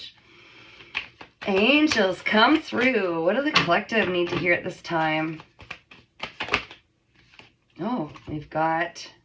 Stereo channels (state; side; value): identical; both; correlation 1.00